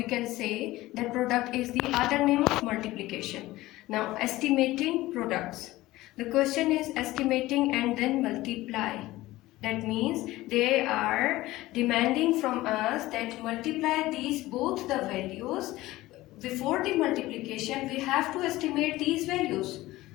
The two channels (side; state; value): right; quieter; 17.6 dB